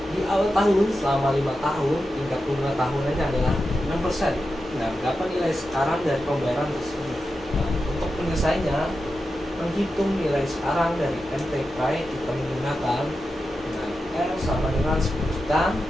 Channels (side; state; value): both; normal; correlation 0.90